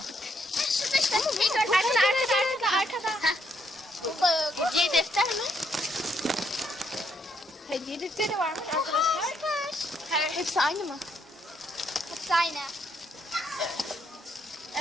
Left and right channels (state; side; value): normal; both; correlation 0.74